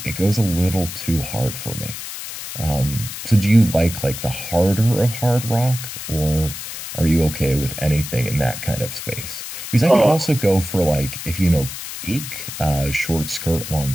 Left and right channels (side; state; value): left; noise; hiss, 9 dB below the sound